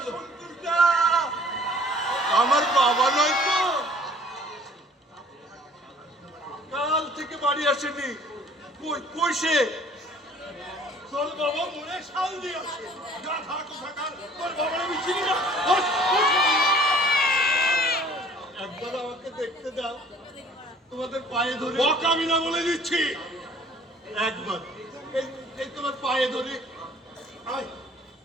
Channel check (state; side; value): normal; both; correlation 0.53